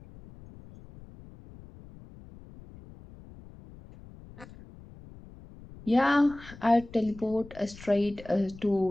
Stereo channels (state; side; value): noise; left; rumble, 19 dB below the sound